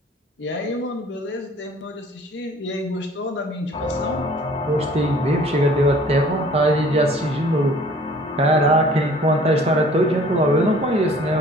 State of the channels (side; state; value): both; normal; correlation 0.52